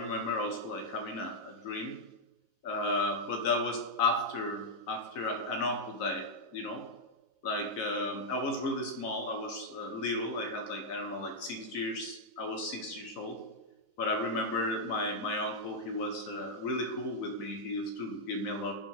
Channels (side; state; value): right; late; 4.0 ms